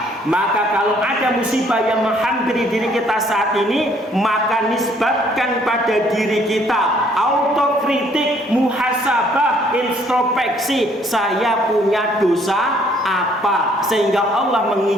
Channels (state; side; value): normal; both; correlation 0.63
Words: Maka kalau ada musibah yang menghampiri diri kita saat ini, maka nisbatkan pada diri kita. Autokritik, muhasabah, introspeksi, saya punya dosa apa, sehingga Allah